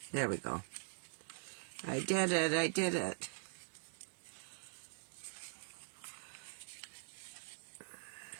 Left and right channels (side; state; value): left; silent; digital silence